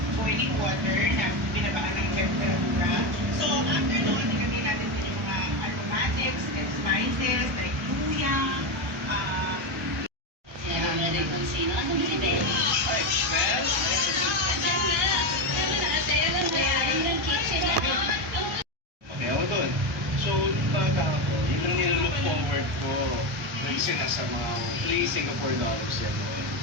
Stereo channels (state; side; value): normal; both; correlation 0.13